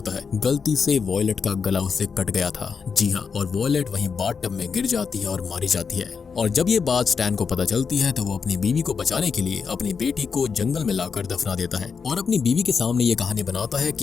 है, गलती से वॉयलेट का गला उससे कट गया था। जी हाँ, और वॉयलेट वहीं बाथटब में गिर जाती है और मारी जाती है। और जब ये बात स्टैन को पता चलती है तो वो अपनी बीवी को बचाने के लिए अपनी बेटी को जंगल में लाकर दफना देता है और अपनी बीवी के सामने ये कहानी बनाता है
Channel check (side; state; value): right; quieter; 5.8 dB